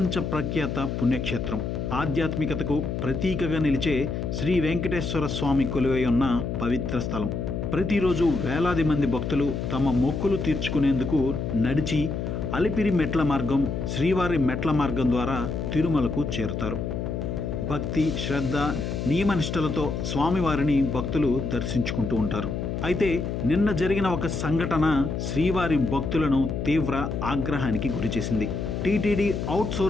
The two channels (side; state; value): left; noise; hum, 3 dB below the sound